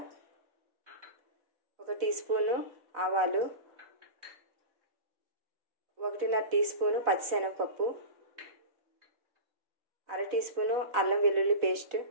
1 టీ స్పూను ఆవాలు, 1.5 టీ స్పూను పచ్చిశనగపప్పు, 1/2 టీ స్పూను అల్లం వెల్లుల్లి పేస్ట్,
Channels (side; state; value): left; late; 4.1 ms